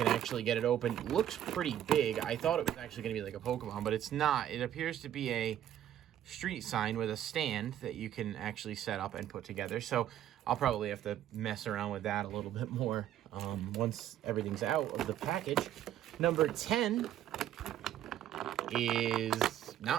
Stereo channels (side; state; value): left; quieter; 11.4 dB